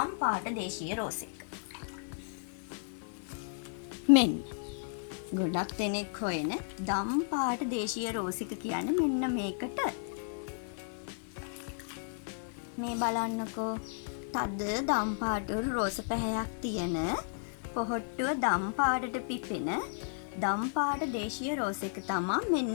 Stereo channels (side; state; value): right; silent; 55 dB below the other